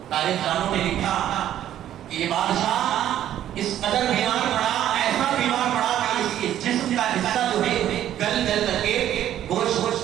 تاریخ دانوں نے لکھا کہ یہ بادشاہ اس قدر بیمار پڑا, ایسا بیمار پڑا کہ اس کے جسم کا حصہ جو ہے گل کر کے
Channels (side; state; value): left; quieter; 11.6 dB